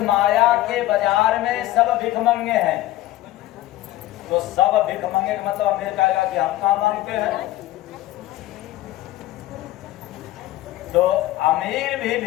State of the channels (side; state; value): right; quieter; 15.8 dB